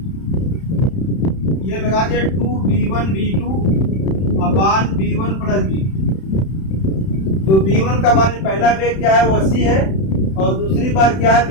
ये लगा दिया 2b1 b2 अपान b1 प्लस b2। तो b1 का मान पहला वेग क्या है वो 80 है और दूसरी बार क्या है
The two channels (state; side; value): late; right; 31 ms